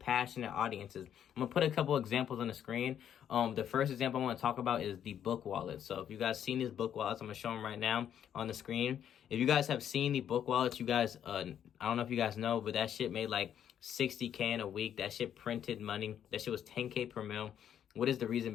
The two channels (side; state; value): right; quieter; 9.5 dB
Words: audiences. I'm gonna put a couple examples on the screen. The first example I want to talk about is the book wallet. So if you guys seen these book wallets, I'm gonna show them right now on the screen. If you guys have seen the book wallets, you guys, I don't know if you guys know, but that shit made like 60K in a week. That shit printed money. That shit was 10K per mil. What is the reason